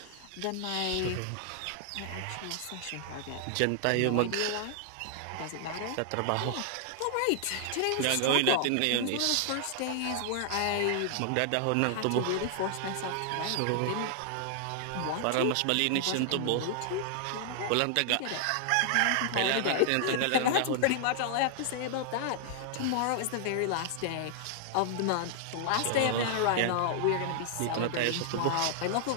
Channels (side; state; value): both; different; correlation -0.01